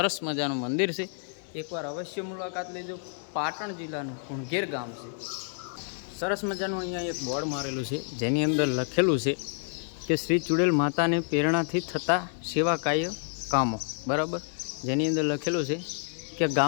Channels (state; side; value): silent; right; 57 dB below the other